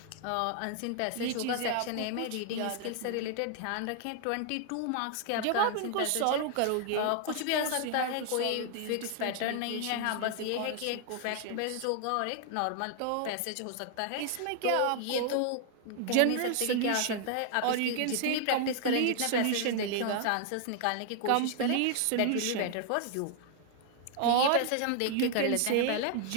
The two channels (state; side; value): different; both; correlation 0.00